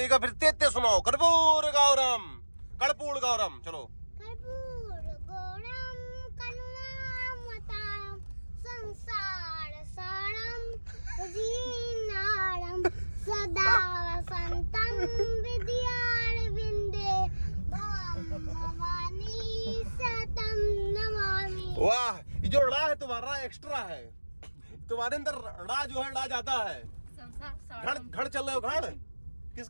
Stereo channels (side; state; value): both; inverted; correlation -1.00